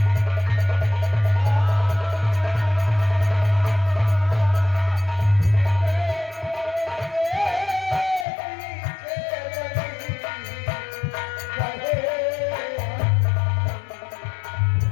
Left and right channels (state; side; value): drops out; right; at 8.2 s